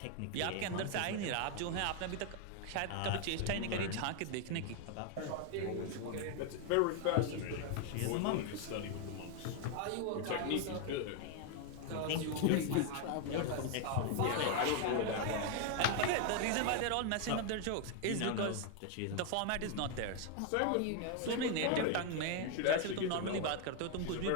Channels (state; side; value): different; both; correlation 0.01